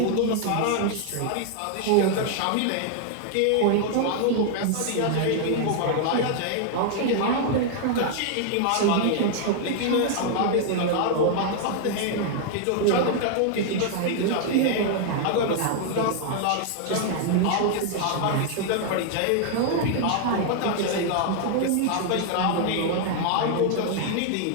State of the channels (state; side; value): different; both; correlation 0.00